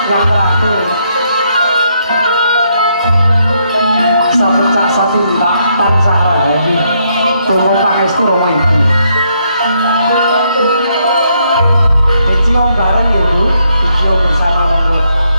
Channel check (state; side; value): inverted; both; correlation -0.75